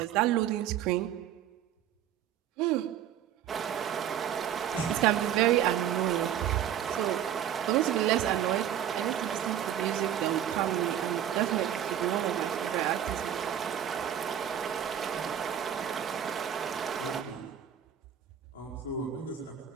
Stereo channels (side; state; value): left; quieter; 10.2 dB